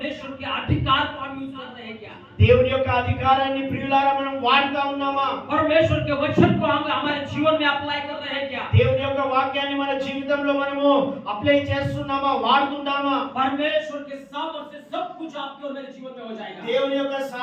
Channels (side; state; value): both; identical; correlation 1.00